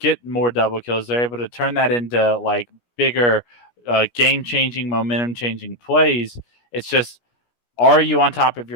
more double kills. They're able to turn that into like bigger game-changing, momentum-changing plays. It's just, are you on top of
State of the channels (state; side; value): late; right; 17 ms